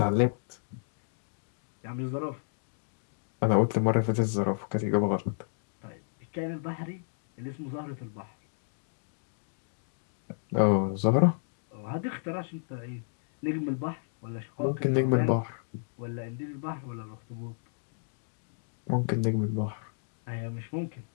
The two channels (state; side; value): silent; right; digital silence